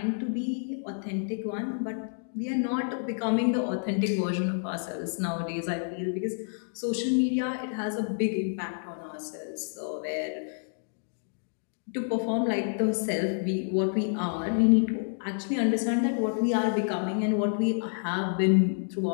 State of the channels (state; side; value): silent; right; digital silence